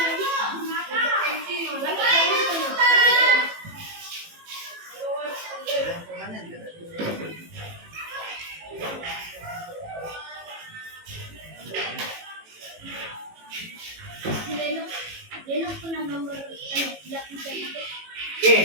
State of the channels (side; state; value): left; late; 18 ms